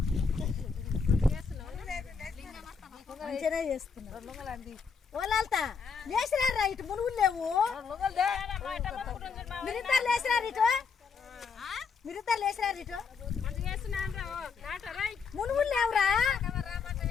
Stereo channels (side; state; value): right; quieter; 5.7 dB